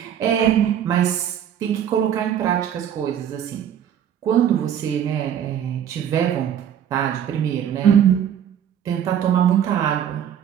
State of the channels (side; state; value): left; quieter; 9.5 dB